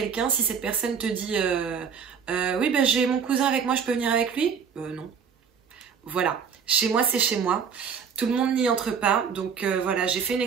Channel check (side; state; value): left; quieter; 6.7 dB